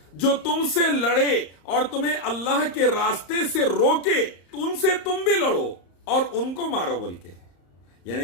जो तुमसे लड़े और तुम्हें अल्लाह के रास्ते से रोके, उनसे तुम भी लड़ो और उनको मारो बोल के। यानी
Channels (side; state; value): right; late; 34 ms